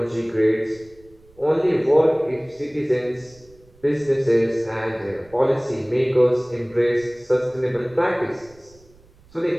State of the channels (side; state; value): right; noise; rumble, 28 dB below the sound